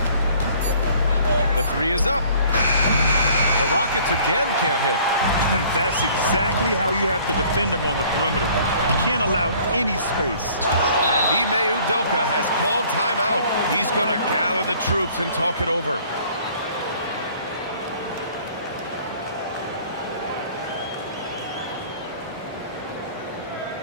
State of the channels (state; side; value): inverted; both; correlation -0.54